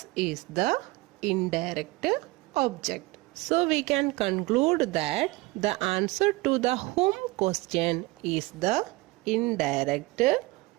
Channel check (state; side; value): quieter; left; 22.0 dB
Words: is the indirect object. So, we can conclude that the answer to the whom question is the indirect